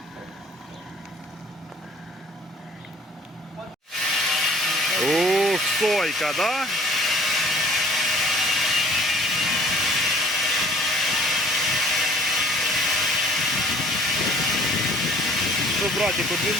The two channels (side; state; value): both; normal; correlation 0.54